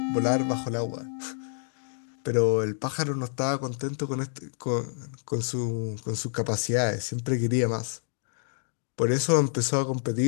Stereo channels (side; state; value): right; silent; digital silence